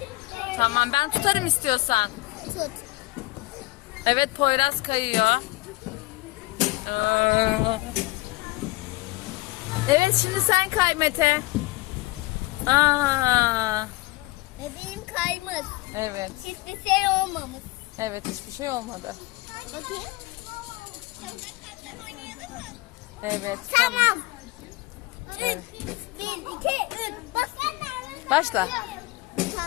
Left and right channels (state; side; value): quieter; right; 21.4 dB